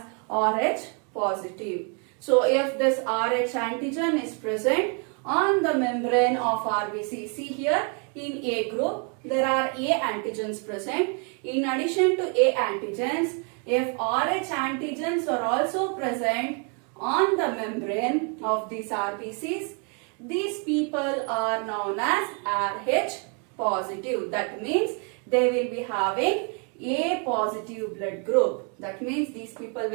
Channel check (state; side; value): quieter; left; 38.0 dB